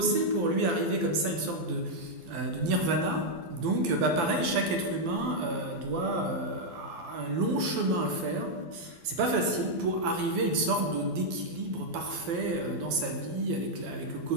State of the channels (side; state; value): left; late; 12 ms